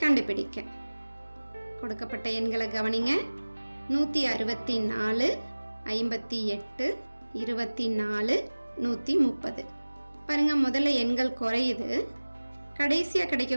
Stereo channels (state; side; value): inverted; both; correlation -1.00